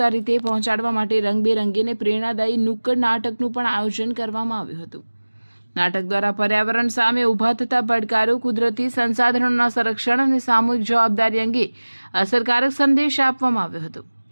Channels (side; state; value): both; inverted; correlation -1.00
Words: રીતે પહોંચાડવા માટે રંગબેરંગી અને પ્રેરણાદાયી નુક્કડ નાટકનું પણ આયોજન કરવામાં આવ્યું હતું। નાટક દ્વારા પર્યાવરણ સામે ઊભા થતા પડકારો, કુદરતી સંસાધનોના સંરક્ષણ અને સામૂહિક જવાબદારી અંગે અસરકારક સંદેશ આપવામાં આવ્યો હતો।